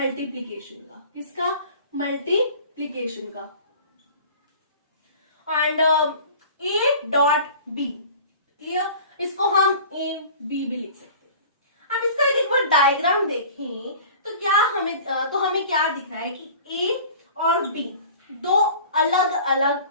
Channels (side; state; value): both; inverted; correlation -0.43